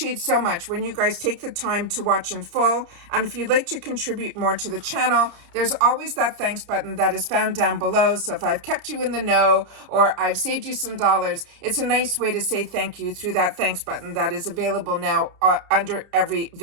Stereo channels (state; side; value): late; left; 30 ms